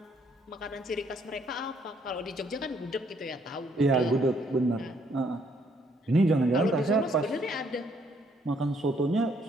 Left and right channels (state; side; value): normal; both; correlation 0.68